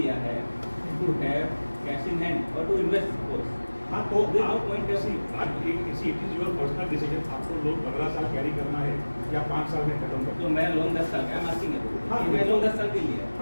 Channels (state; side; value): inverted; both; correlation -1.00